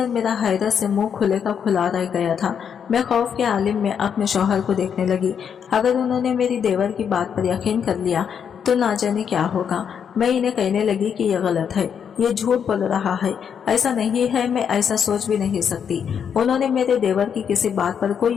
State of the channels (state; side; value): quieter; right; 7.6 dB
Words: मेरा हैरत से मुंह खुले का खुला रह गया था। मैं खौफ के आलिम में अपने शौहर को देखने लगी। अगर उन्होंने मेरी देवर की बात पर यकीन कर लिया तो ना जाने क्या होगा। मैं इन्हें कहने लगी कि यह गलत है, ये झूठ बोल रहा है, ऐसा नहीं है, मैं ऐसा सोच भी नहीं सकती। उन्होंने मेरे देवर की किसी बात पर